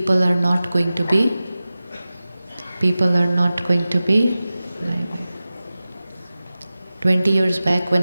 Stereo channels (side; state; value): both; inverted; correlation -0.96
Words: are not going to be. 20 years back,